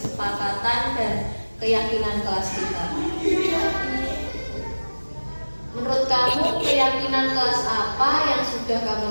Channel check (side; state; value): both; inverted; correlation -1.00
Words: dan keyakinan kelas kita? Menurut kamu keyakinan kelas apa yang sudah kamu